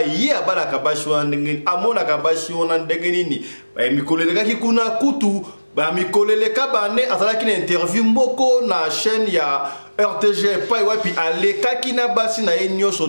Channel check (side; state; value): both; inverted; correlation -1.00